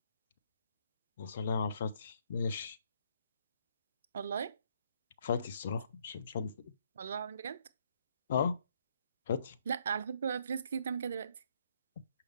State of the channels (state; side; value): inverted; both; correlation -0.69